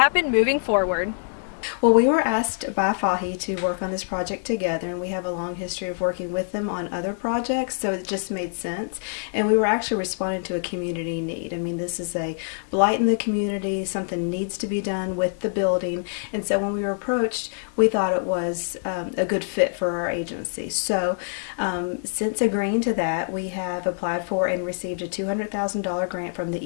moving forward. Well, we were asked by FAHI to work on this project together, and we have a long history of working with them on other projects, so it just made sense. And we were actually responding to a community need. I mean, this is a blight in the community, something needs to be done with the building, and so when we were approached, we thought it was a good fit for our agency. So since agreeing to that, we have applied for and received a $200,000 grant from the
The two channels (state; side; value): silent; right; digital silence